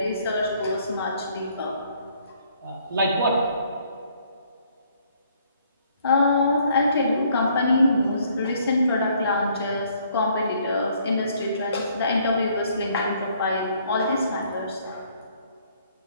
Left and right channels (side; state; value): both; inverted; correlation -0.64